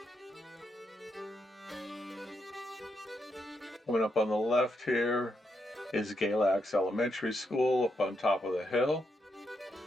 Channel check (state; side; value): normal; both; correlation 0.81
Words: Coming up on the left here is Galax Elementary School up on top of the hill.